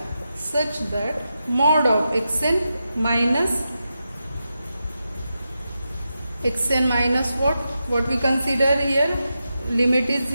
Such that mod of xn minus what? What we consider here, limit is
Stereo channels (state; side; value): inverted; both; correlation -0.89